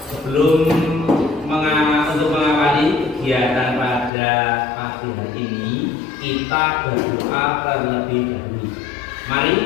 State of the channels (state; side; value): drops out; right; at 4.1 s